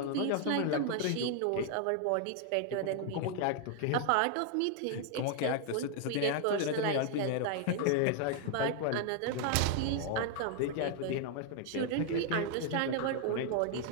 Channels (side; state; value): both; different; correlation 0.00